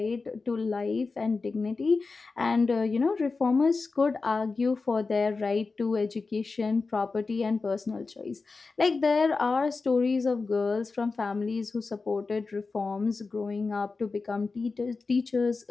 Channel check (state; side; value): quieter; right; 4.1 dB